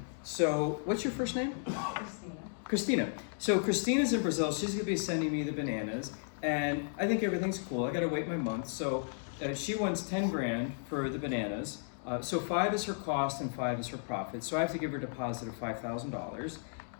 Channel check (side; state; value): right; silent; digital silence